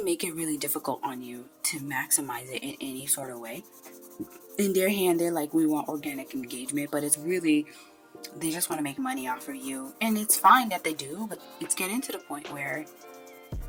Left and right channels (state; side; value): identical; both; correlation 1.00